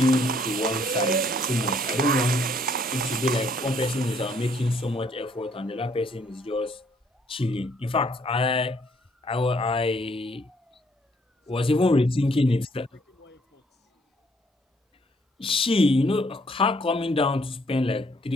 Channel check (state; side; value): normal; both; correlation 0.66